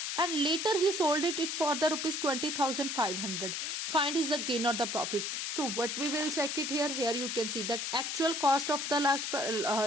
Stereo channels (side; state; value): left; noise; hiss, 3 dB below the sound